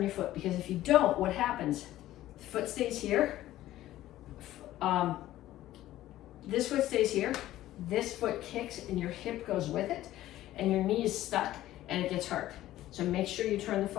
your foot, because if you don't, what happens? The foot stays here. This foot stays here. This foot kicks and your hip goes with it, and your knee is stuck and it gets hurt. So make sure you turn the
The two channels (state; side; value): quieter; right; 14.5 dB